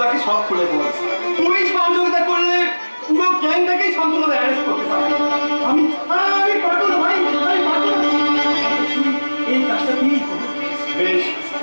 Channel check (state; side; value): inverted; both; correlation -1.00